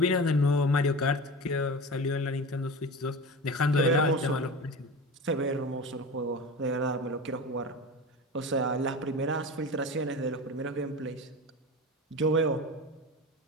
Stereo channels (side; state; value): both; normal; correlation 0.30